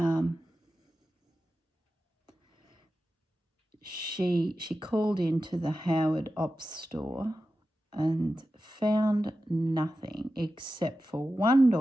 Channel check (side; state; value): both; normal; correlation 0.92